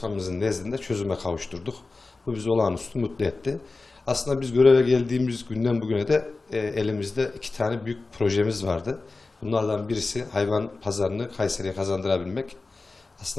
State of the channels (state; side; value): quieter; right; 3.6 dB